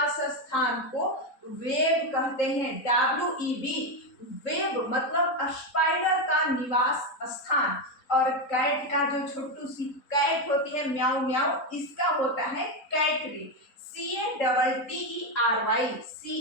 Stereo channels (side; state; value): right; late; 3.9 ms